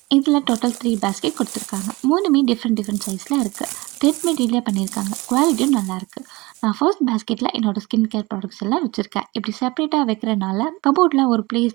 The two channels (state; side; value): quieter; left; 22.7 dB